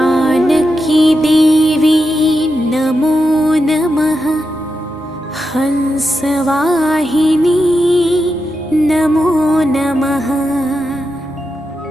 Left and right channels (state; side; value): normal; both; correlation 0.88